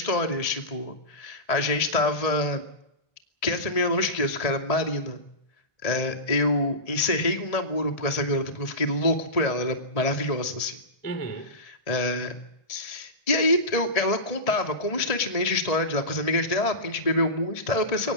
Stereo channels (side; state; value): right; late; 1.7 ms